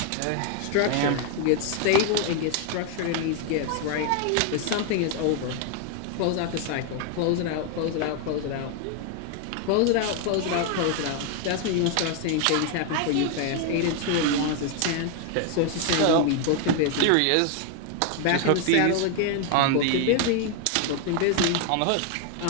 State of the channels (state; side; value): different; both; correlation 0.00